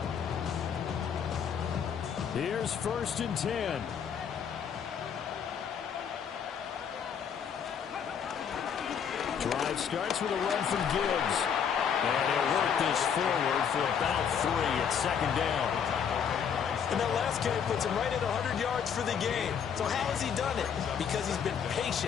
Here's first and 10. Drive starts with a run from Gibbs. And he'll work this forward for about 3 at 2nd down. And that last carry puts him right at 100 yards for the game. So how has he done it? Because he's been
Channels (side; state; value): right; quieter; 7.5 dB